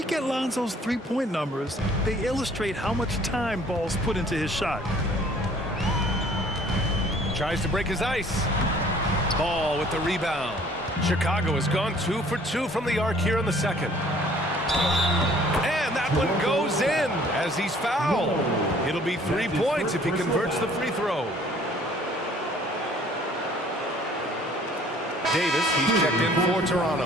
at Lonzo's three-point numbers, they illustrate how much time Ball's put into his shot. Tries to break his ice. Ball with the rebound. Chicago has gone 2 for 2 from the arc here in the second. And that one goes in as he's fouled. It'll be 3 points if he converts the free throw. Davis, he's checked in for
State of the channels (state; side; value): normal; both; correlation 0.56